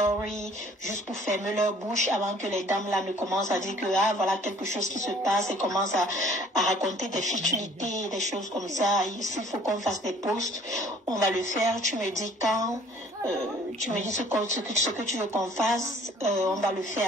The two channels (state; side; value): normal; both; correlation 0.55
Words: juste pour fermer leur bouche avant que les dames là ne commencent à dire que ah voilà quelque chose qui se passe et commencent à raconter des futilités, des choses comme ça. S'il faut qu'on fasse des posts, on va le faire. Tu me dis quand, tu me dis ce que tu veux qu'on fasse, on va le